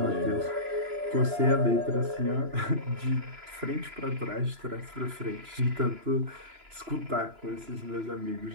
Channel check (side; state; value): left; late; 2.9 ms